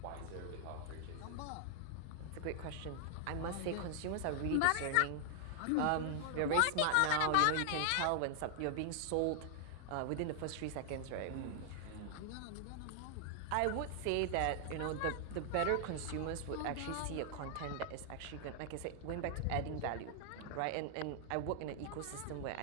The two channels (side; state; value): both; different; correlation 0.00